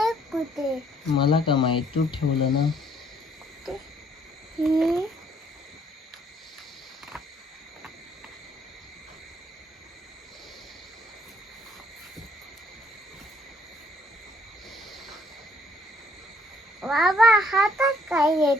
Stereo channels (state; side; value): normal; both; correlation 0.63